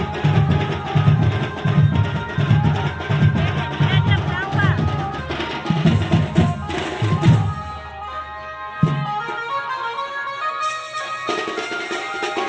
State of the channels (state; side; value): identical; both; correlation 1.00